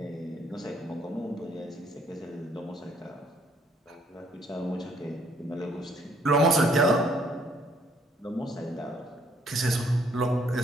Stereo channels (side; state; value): both; normal; correlation 0.66